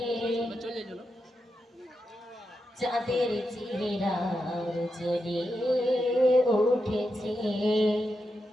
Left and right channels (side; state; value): both; normal; correlation 0.87